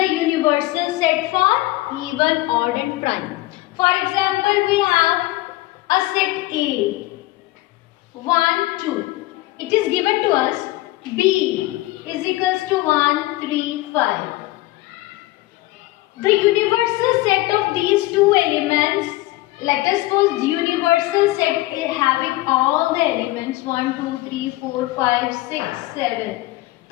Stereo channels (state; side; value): quieter; right; 18.6 dB